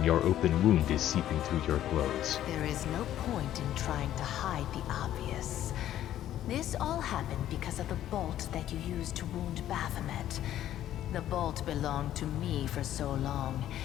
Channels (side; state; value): right; quieter; 12.2 dB